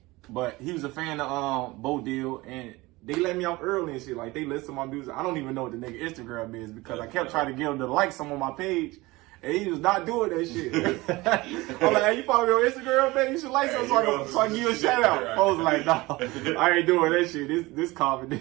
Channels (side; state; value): left; quieter; 21.2 dB